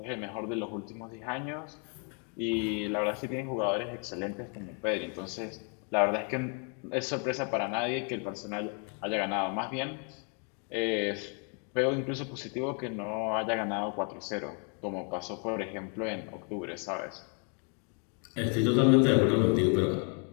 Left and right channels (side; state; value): right; quieter; 39.1 dB